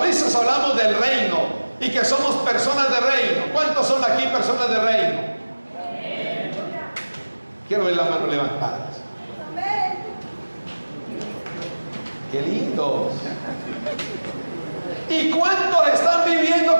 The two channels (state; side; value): inverted; both; correlation -1.00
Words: veces hablamos del reino y que somos personas de reino. ¿Cuántos son aquí personas de reino? Quiero ver las manos levantadas. ¡Qué lindos! ¿Y cuántos están viviendo